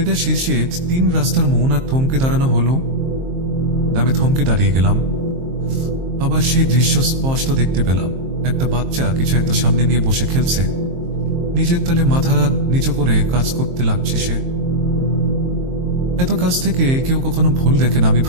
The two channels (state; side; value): late; left; 23 ms